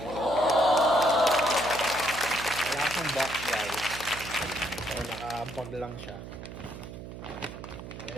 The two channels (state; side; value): noise; right; hum, 11 dB below the sound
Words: Wala siyang box guys. So naka-bag lang siya.